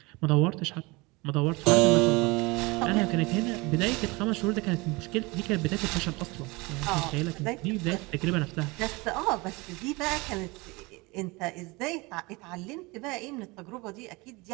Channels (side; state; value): left; quieter; 24.9 dB